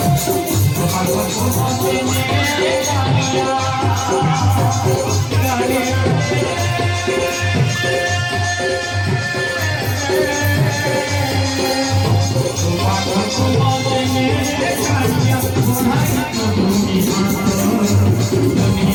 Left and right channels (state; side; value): identical; both; correlation 1.00